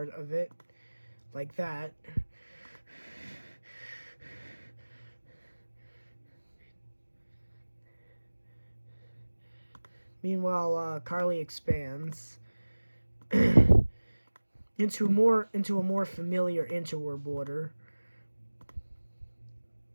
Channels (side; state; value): both; inverted; correlation -1.00